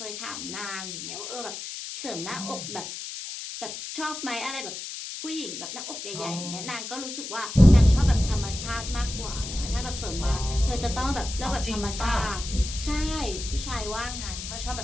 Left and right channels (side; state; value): left; noise; hiss, 8 dB below the sound